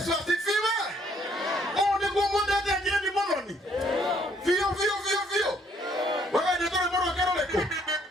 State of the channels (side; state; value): both; normal; correlation 0.66